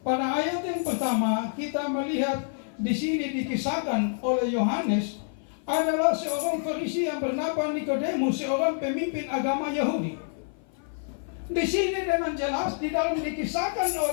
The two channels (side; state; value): right; silent; 55 dB below the other